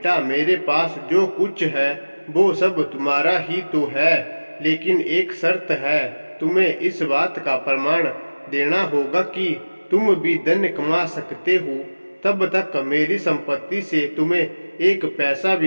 मेरे पास जो कुछ है वो सब तुम्हारा ही तो है, लेकिन एक शर्त है। तुम्हें इस बात का प्रमाण देना होगा कि तुम भी धन कमा सकते हो। तब तक मेरी संपत्ति से तुम्हें एक पैसा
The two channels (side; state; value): both; inverted; correlation -1.00